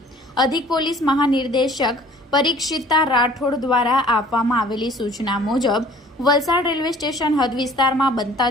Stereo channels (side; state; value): both; normal; correlation 0.51